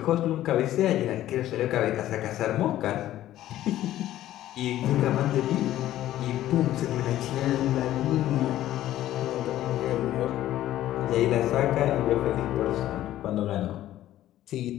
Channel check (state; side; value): quieter; right; 13.5 dB